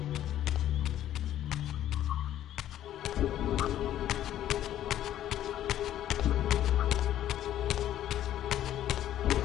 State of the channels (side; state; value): right; quieter; 12.0 dB